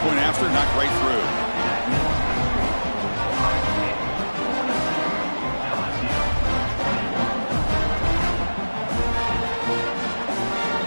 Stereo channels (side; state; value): both; inverted; correlation -1.00